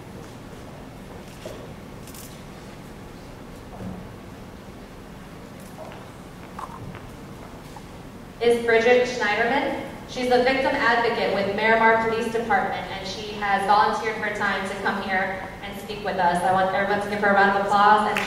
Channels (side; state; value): both; identical; correlation 1.00